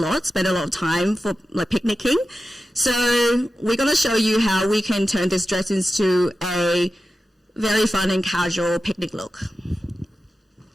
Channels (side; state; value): both; normal; correlation 0.93